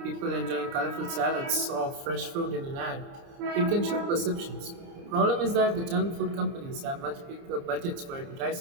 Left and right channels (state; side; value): late; left; 29 ms